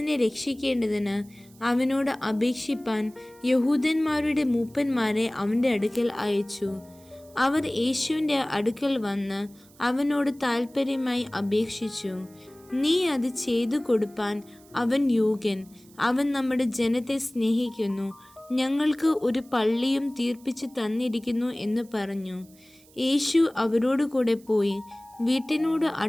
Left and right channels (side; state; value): right; noise; hiss, 27 dB below the sound